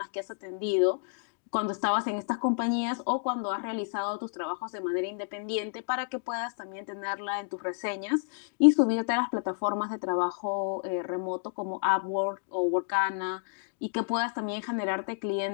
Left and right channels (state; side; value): silent; right; digital silence